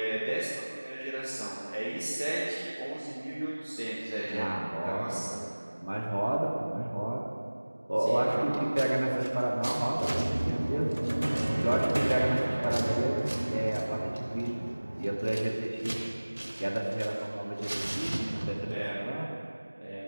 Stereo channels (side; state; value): both; inverted; correlation -1.00